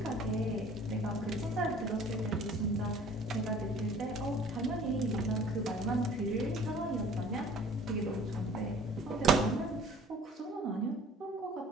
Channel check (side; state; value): both; normal; correlation 0.50